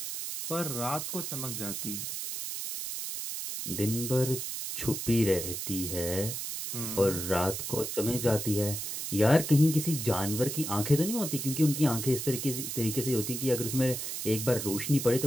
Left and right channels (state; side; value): noise; right; hiss, 5 dB below the sound